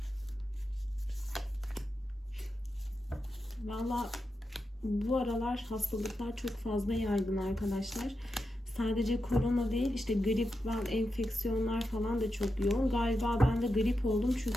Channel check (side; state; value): both; normal; correlation 0.88